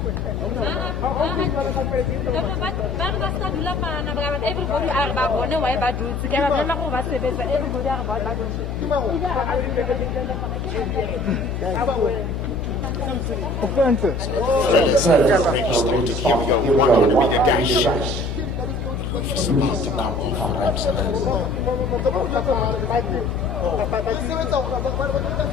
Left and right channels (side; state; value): left; noise; hum, 4 dB below the sound